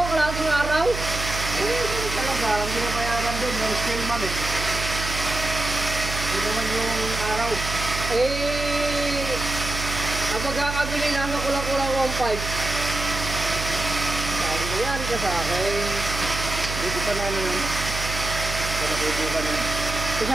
araw? Talaga, ang pinapayaran doon, yung scale man eh. Ito naman yung araw. Ang pagkakabili nasa kulang-kulang 1,500. Sabi ko yan ka sa akin. Dito pa na ano yun. Panakubukan yun. Kasi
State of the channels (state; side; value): noise; right; hum, 6 dB below the sound